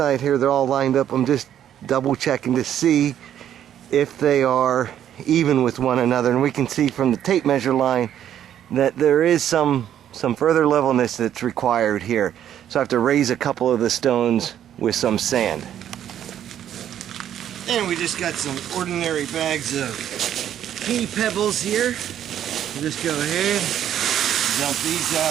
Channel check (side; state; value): left; quieter; 10.4 dB